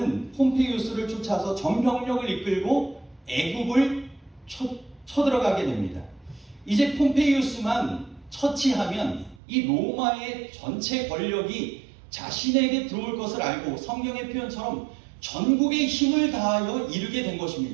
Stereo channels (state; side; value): drops out; left; at 9.4 s